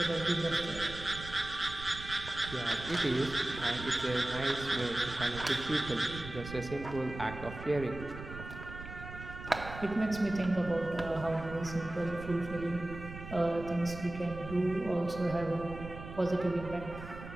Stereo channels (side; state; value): right; noise; rumble, 11 dB below the sound